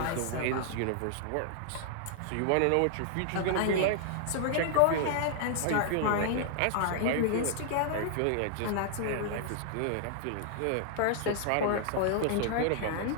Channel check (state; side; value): different; both; correlation -0.01